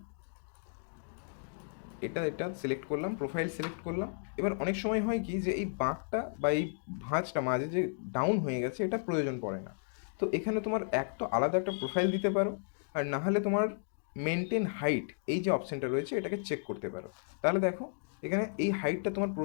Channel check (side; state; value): right; silent; digital silence